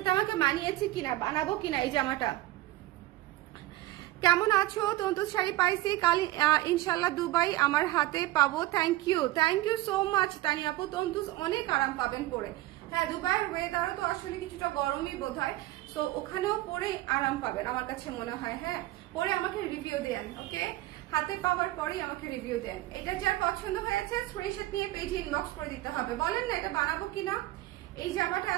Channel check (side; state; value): left; quieter; 17.3 dB